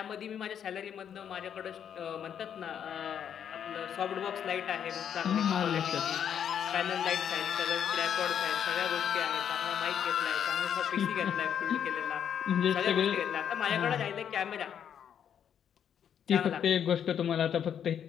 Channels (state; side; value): quieter; right; 8.7 dB